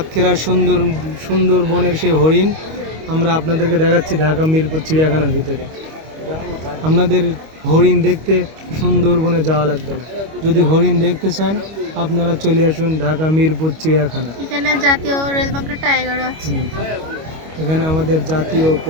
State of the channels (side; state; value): left; late; 25 ms